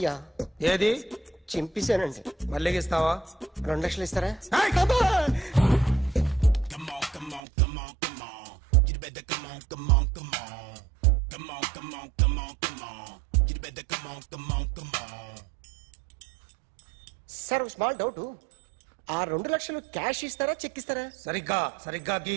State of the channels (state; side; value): drops out; left; at 7.4 s